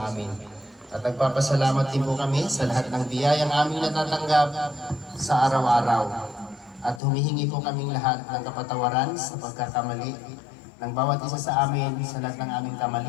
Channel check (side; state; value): right; drops out; at 7.0 s